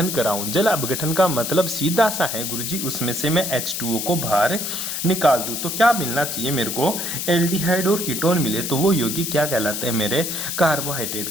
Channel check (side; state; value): left; noise; hiss, 3 dB below the sound